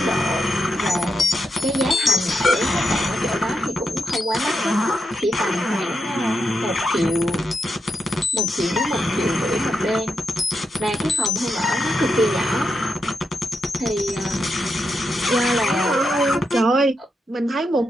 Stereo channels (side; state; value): both; normal; correlation 0.85